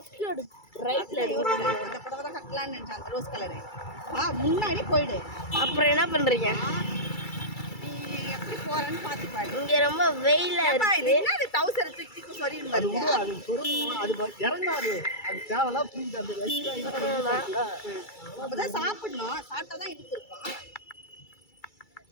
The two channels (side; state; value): right; late; 2.3 ms